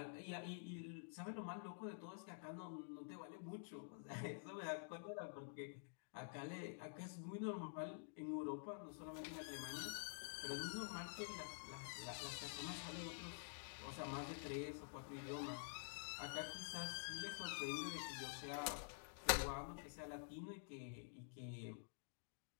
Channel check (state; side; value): silent; right; digital silence